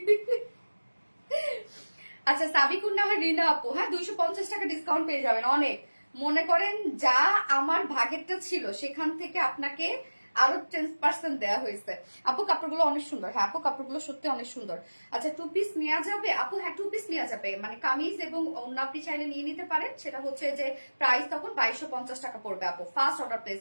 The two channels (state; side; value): inverted; both; correlation -1.00